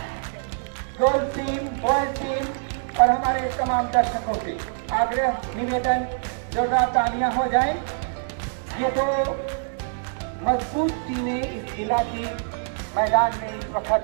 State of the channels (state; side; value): silent; left; digital silence